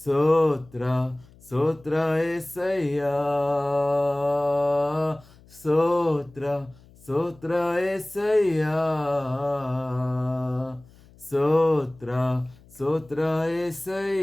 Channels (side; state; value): left; noise; hum, 26 dB below the sound